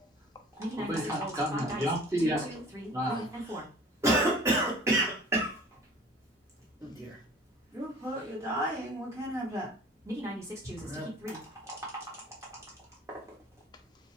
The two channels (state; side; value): normal; both; correlation 0.46